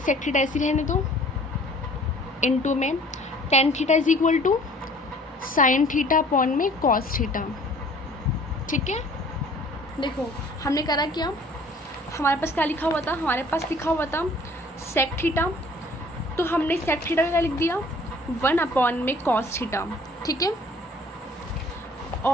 थीटा ऐसी रहने दो, इंटू में tan theta is equal to sine theta upon में कॉस थीटा। ठीक है, देखो हमने करा क्या, हमारे पास क्या लिखा हुआ था, हमारे पास लिखा हुआ था सेक थीटा, तो हमने सेक थीटा का क्या लिख दिया, वन अपॉन में कॉस थीटा। ठीक है,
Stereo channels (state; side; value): normal; both; correlation 0.53